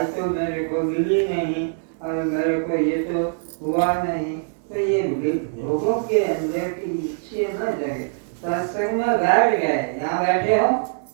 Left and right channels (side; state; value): left; silent; 64 dB below the other